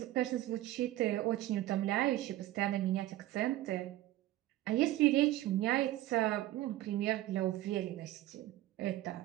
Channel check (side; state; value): left; quieter; 15.5 dB